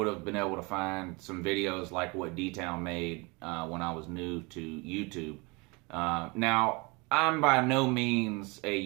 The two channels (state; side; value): quieter; left; 27.5 dB